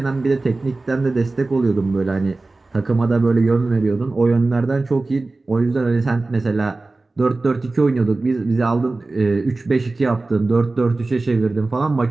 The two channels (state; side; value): quieter; left; 3.3 dB